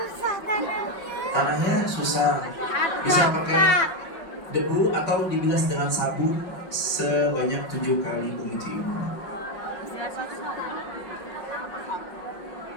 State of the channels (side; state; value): right; late; 5.5 ms